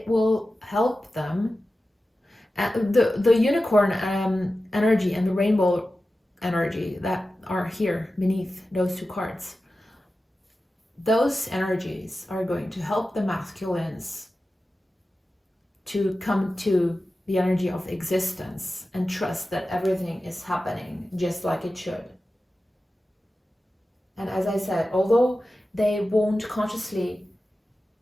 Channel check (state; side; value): normal; both; correlation 0.94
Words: will help them. The unicorn energy and the rainbow energy that are here beneath those two cards, those energies are going to help the masculines to come to the energy of existence and trust that everything is happening just like it should. And as I said, although they won't consciously